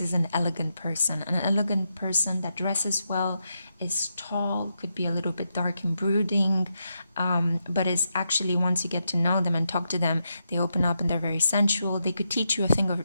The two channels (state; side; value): inverted; both; correlation -0.83